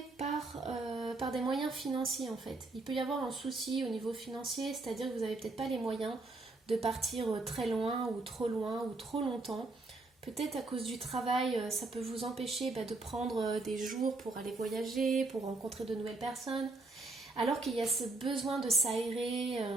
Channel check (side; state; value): left; quieter; 3.2 dB